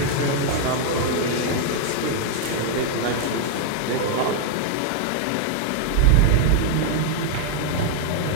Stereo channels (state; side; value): different; both; correlation 0.00